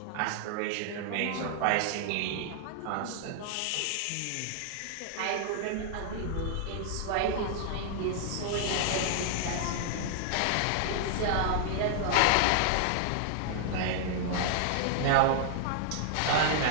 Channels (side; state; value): both; different; correlation 0.00